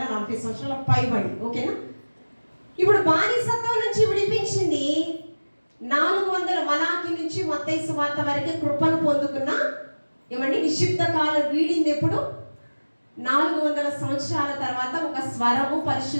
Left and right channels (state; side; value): inverted; both; correlation -1.00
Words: సంవత్సరాల పైబడి. ఓకేనా? ఇప్పుడు బానిసత్వం నుంచి విడిపించింది 400 మలాకి నుంచి మత్తయి సువార్త వరకు కృపను పొందుకున్న ఏమండి నిశ్చిత కాలం వీడింది ఎప్పుడు? 400 సంవత్సరాల తర్వాత ఒక స్వరము,